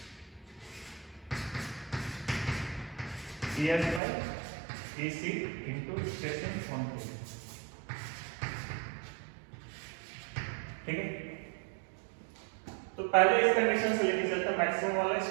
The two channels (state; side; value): drops out; left; at 4.0 s